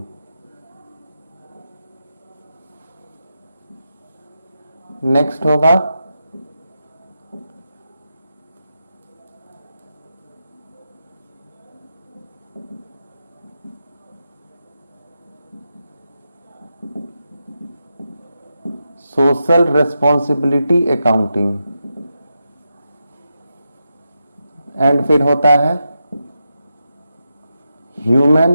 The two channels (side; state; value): both; inverted; correlation -0.88